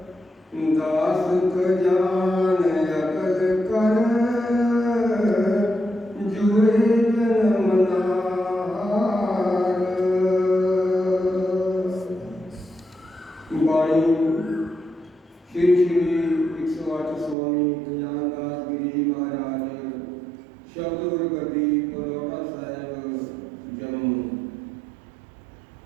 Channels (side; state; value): left; drops out; at 17.4 s